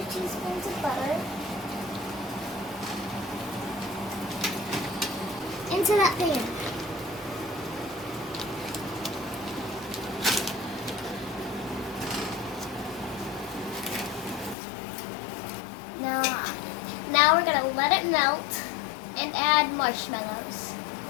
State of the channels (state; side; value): drops out; right; at 14.6 s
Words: teaspoons of butter into that pan. Now we're going to let it melt and add marshmallows.